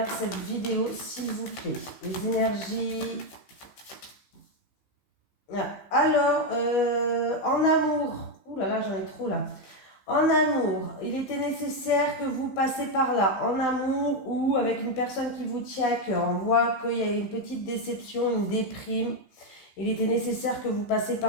cette vidéo, s'il vous plaît. Les énergies. Alors, en amour. Ouh là là, j'en ai trop là. En amour, il était nécessaire que vous passiez par là. En amour ou avec une personne qui vous tient à cœur. On voit qu'il y a une petite déception, une déprime. Il était nécessaire que vous passiez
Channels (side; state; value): right; late; 15 ms